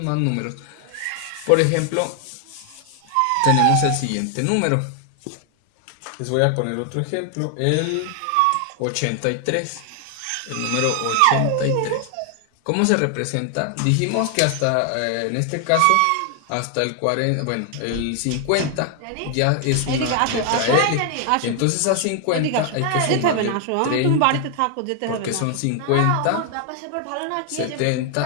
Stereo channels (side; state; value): both; different; correlation 0.00